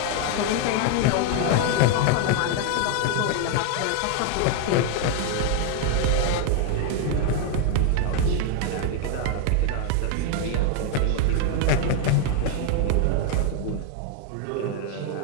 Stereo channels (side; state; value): both; different; correlation 0.01